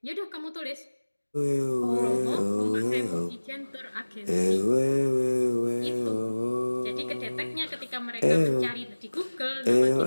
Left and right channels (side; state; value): both; inverted; correlation -1.00